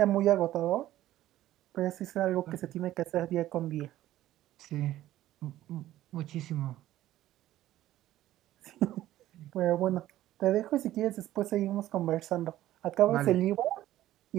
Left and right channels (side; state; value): left; quieter; 14.2 dB